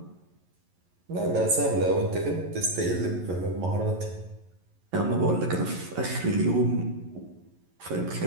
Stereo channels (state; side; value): late; left; 11 ms